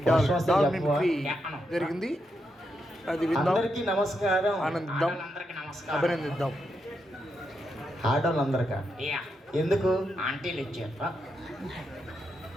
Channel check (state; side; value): normal; both; correlation 0.83